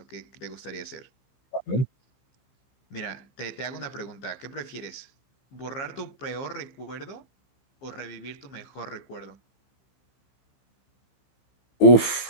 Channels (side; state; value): right; late; 15 ms